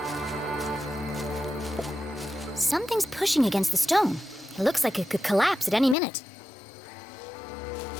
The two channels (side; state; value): right; drops out; at 6.0 s